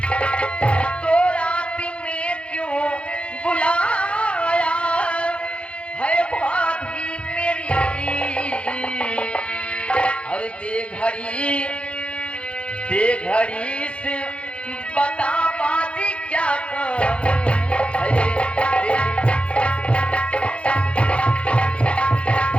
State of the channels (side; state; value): right; late; 0.060 ms